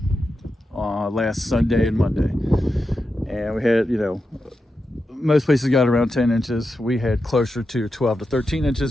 last Sunday and Monday. And we had, most places got around 10 inches. We had closer to 12 to 13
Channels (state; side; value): normal; both; correlation 0.89